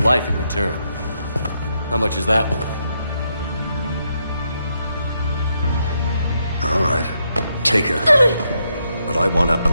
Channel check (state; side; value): inverted; both; correlation -0.79